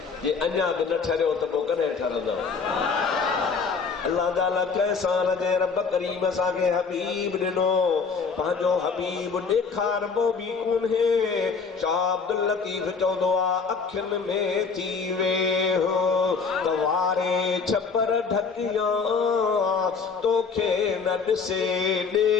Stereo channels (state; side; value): quieter; right; 5.2 dB